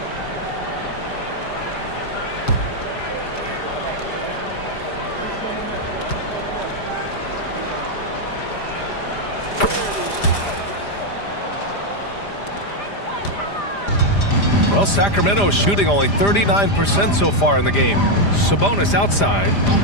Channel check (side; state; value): right; late; 5.0 ms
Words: Well, Sacramento is shooting only 39% so far in the game. Sabonis outside.